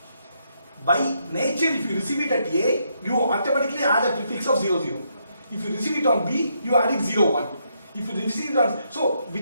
By nature, if you receive it at A, you automatically add a prefix of 0 0. If you receive it on B, you add it 0 1. If you receive it on, so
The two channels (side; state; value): both; inverted; correlation -0.76